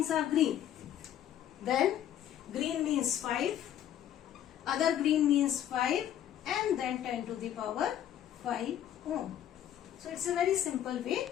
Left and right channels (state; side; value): quieter; right; 10.8 dB